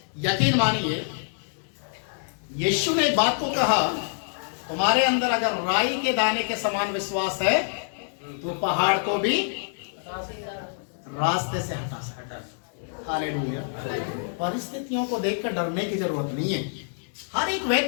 यकीन मानिए, यीशु ने एक बात को कहा, तुम्हारे अंदर अगर राई के दाने के समान विश्वास है तो पहाड़ को भी रास्ते से हटा सकता। हालेलुया। परिस्थितियों को देखकर डरने की जरूरत नहीं है। हर एक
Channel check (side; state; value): right; silent; digital silence